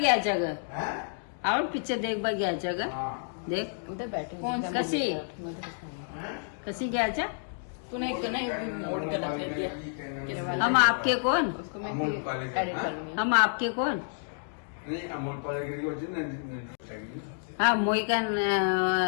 जगह और पिक्चर देख बा घ्यायचं ग देख उधर बैठे कौन सी? कशी कशी घ्यायचं तूने एक ना मोड़ कर रख दिया हम आपके कौन उसको मैं फिर edit करूंगी। हम आपके कौन नहीं अमोल पालेगिरी को जिन हाँ मोई का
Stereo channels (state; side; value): silent; right; digital silence